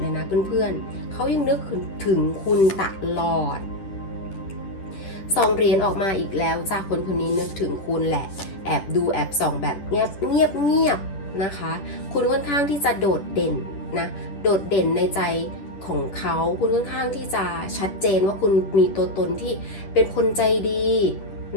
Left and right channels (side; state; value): right; late; 10 ms